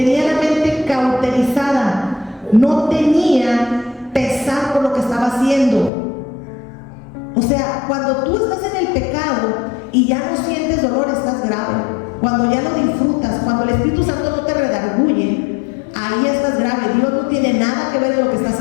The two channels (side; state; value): right; drops out; at 5.9 s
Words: la mente cauterizada, no tenía pesar por lo que estaba haciendo. O sea, cuando tú estás en el pecado y ya no sientes dolor, estás grave. Cuando ya lo disfrutas, cuando el Espíritu Santo no te redarguye, ahí estás grave. Dios no tiene nada que ver en lo que estás